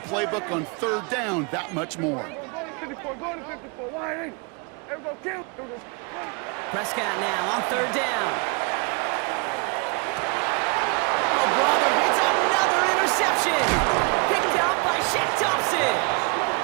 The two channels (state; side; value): quieter; left; 32.8 dB